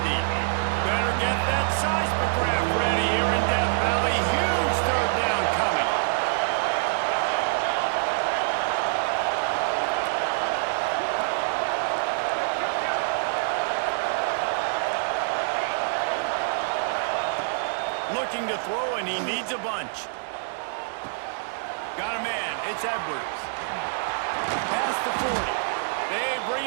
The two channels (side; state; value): left; silent; digital silence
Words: deep. Better get that seismograph ready here in Death Valley. Huge third down coming. Looking to throw, and he needs a bunch. Got a man. It's Edwards. Past the 40. They